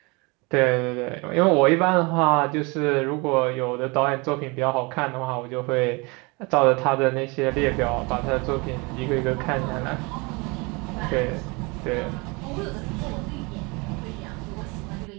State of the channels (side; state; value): left; quieter; 28.0 dB